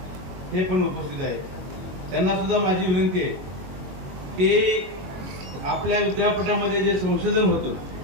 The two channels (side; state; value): left; late; 22 ms